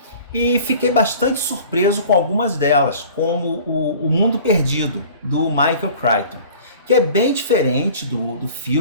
e fiquei bastante surpreso com algumas delas, como o Mundo Perdido, do Michael Crichton, que é bem diferente do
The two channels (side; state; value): both; inverted; correlation -0.45